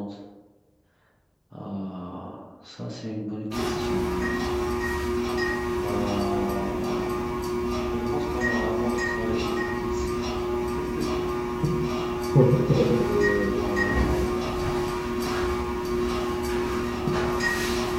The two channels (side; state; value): both; identical; correlation 1.00